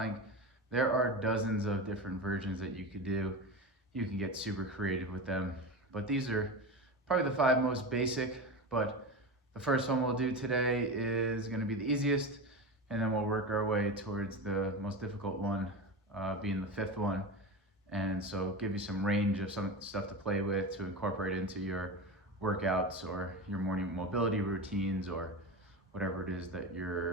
There are dozens of different versions that you could do. You can get super creative with them, but these are probably the 5 most basic, but the first one we'll do today is going to be the easiest, and then we'll work our way towards the most difficult one, being the 5th one. And so give you some range of some stuff to play with to incorporate into your workouts or your morning mobility routines or whatever it is that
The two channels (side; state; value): both; normal; correlation 0.24